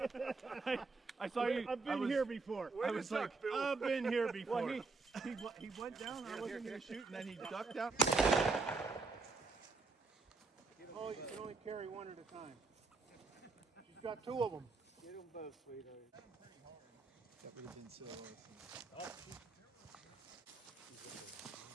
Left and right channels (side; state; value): left; quieter; 4.0 dB